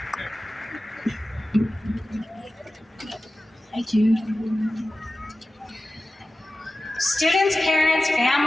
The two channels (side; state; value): both; normal; correlation 0.96